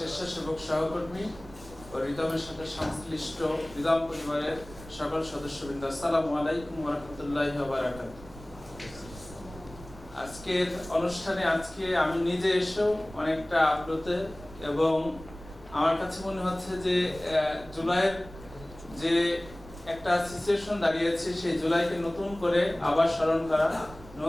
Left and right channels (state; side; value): noise; right; rumble, 17 dB below the sound